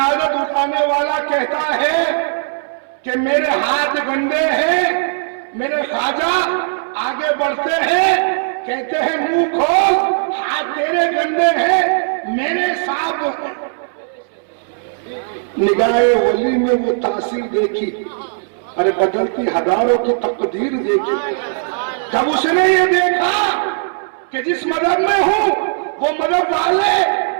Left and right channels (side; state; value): left; silent; 68 dB below the other